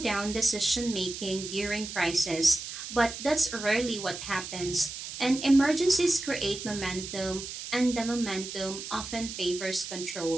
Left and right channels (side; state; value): right; noise; hiss, 9 dB below the sound